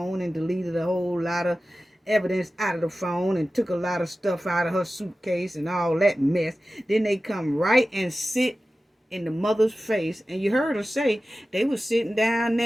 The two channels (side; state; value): both; normal; correlation 0.95